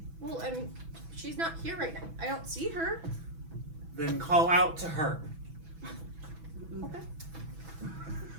Well, I mean, she's not here right now. I don't see her. Then call out to her. Okay.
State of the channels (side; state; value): left; late; 6.1 ms